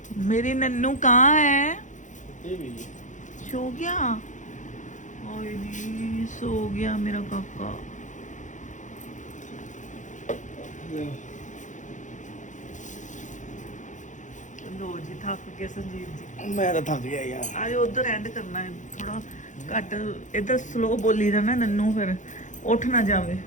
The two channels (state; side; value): late; right; 0.36 ms